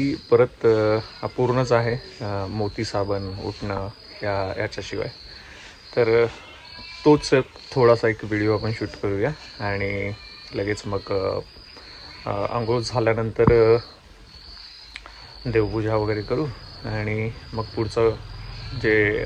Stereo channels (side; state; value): both; identical; correlation 1.00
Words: परत अपूर्णच आहे मोती साबण उठणं याच्याशिवाय. तर तोच थोडासा एक व्हिडिओ आपण शूट करूया आणि लगेच मग आंघोळ झाल्यानंतर देवपूजा वगैरे करू आणि मग पुढचं